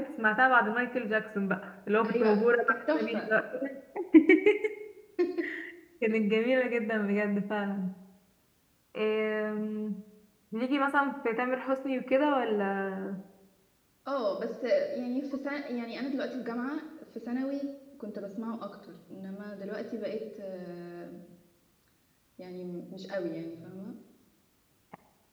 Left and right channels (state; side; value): identical; both; correlation 1.00